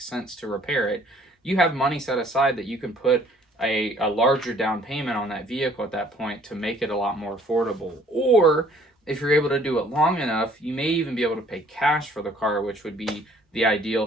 sense to repair it, you have money set aside that you can put a larger down payment on that vehicle at that point to make it a lot more affordable. Or if you're able to do it long enough, you may even be able to pay cash for the car, which would be the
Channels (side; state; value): both; normal; correlation 0.58